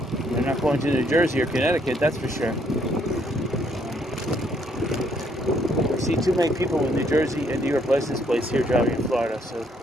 They're not going to New Jersey or Connecticut, that's for sure. I see too many people with New Jersey and New York license plates here driving in Florida, so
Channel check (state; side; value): normal; both; correlation 0.69